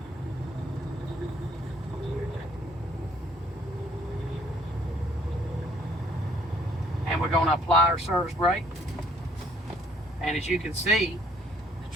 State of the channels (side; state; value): both; normal; correlation 0.62